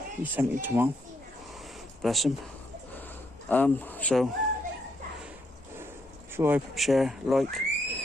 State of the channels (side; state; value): both; normal; correlation 0.76